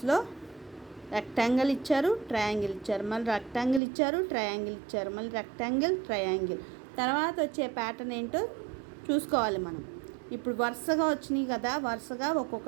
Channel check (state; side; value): drops out; left; at 3.8 s